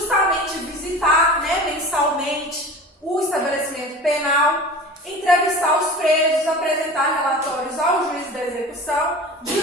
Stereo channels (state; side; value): normal; both; correlation 0.36